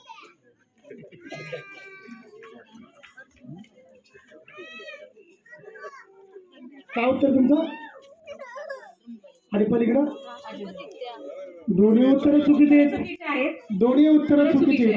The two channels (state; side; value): identical; both; correlation 1.00